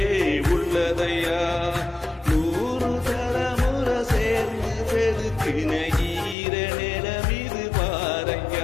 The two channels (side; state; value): right; drops out; at 6.4 s